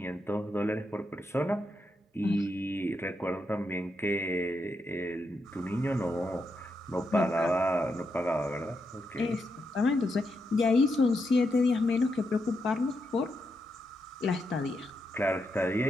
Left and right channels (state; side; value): normal; both; correlation 0.83